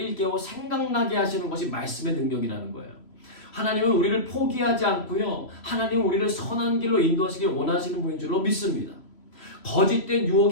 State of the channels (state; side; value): late; right; 3.0 ms